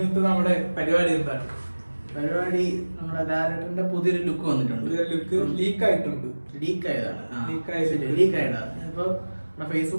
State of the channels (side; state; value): both; inverted; correlation -1.00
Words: നമ്മുടെ പരിപാടി എന്താണ്? പരിപാടി നമ്മുടെ ലാലേട്ടന്റെ പുതിയൊരു ലുക്ക് വന്നിട്ടുണ്ട്. പുതിയൊരു ലുക്ക് ലീക്ക് ആയിട്ടുണ്ട്. ലീക്ക് ആയതാണ്. ഇപ്പൊ